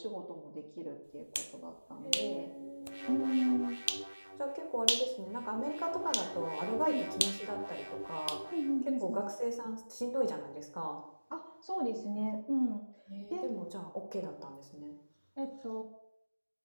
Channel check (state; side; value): inverted; both; correlation -1.00